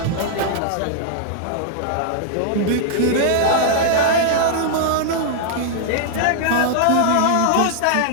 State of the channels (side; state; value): both; different; correlation -0.01